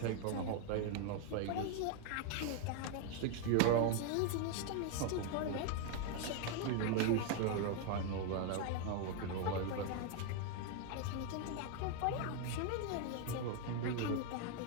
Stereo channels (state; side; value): different; both; correlation 0.01